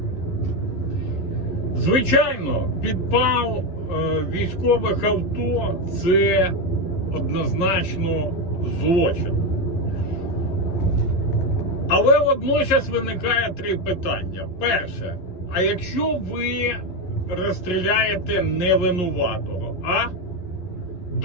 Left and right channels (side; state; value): right; late; 11 ms